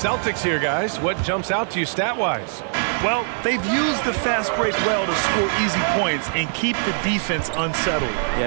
here, guys, what jumps out to you stat-wise? Well, they've used the fast break well to score easy points and keep the defense unsettled.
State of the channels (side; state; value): left; silent; 64 dB below the other